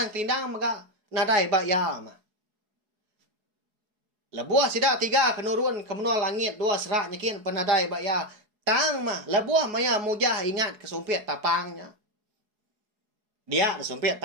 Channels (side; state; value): left; late; 4.8 ms